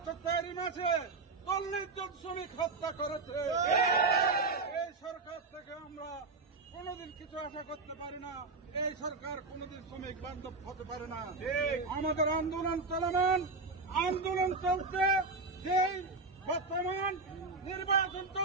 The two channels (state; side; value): quieter; left; 3.8 dB